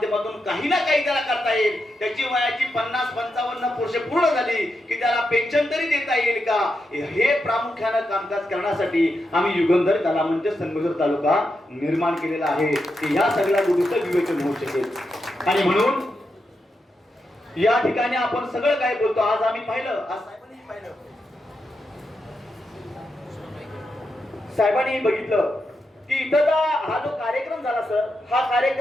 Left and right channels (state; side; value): normal; both; correlation 0.86